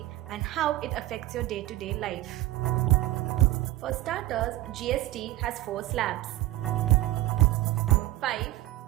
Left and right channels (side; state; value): left; quieter; 16.5 dB